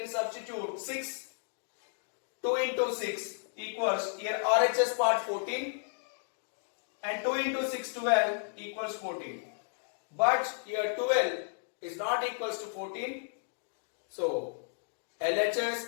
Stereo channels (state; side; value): silent; right; digital silence